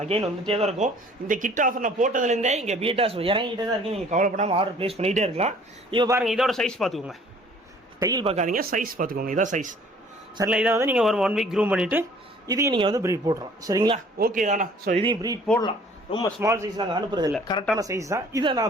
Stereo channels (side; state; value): both; normal; correlation 0.54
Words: வந்துகிட்டே தான் இருக்கும். இந்த கிட் ஆஃபர் நான் போட்டதுலேருந்தே இங்கே பீட்டாஸ் இறங்கிட்டே தான் இருக்குது. நீங்கள் கவலைப்படாமல் ஆர்டர் ப்ளேஸ் பண்ணிகிட்டே இருக்கலாம். இப்போ பாருங்கள், இதோட சைஸ் பார்த்துக்கோங்க, டைல் பார்க்காதீங்க, சைஸ் பார்த்துக்கோங்க. இதான் சைஸ். சரிங்களா, இதை வந்து நீங்கள் ஒரு 1 வீக் க்ரூம் பண்ணிவிட்டு இதையும் நீங்கள் வந்து ப்ரீட் போட்டுறோம். சரிங்களா, ஓகே தானா? ஸோ இதையும் ப்ரீட் போடலாம். ரொம்ப ஸ்மால் சைஸ் நாங்கள் அனுப்புறதில்லை, கரெக்டான சைஸ் தான். இதை